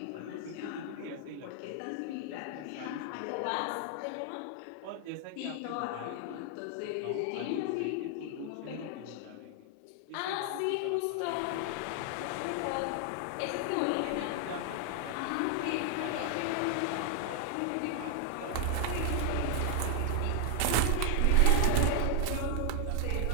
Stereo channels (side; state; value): both; different; correlation 0.00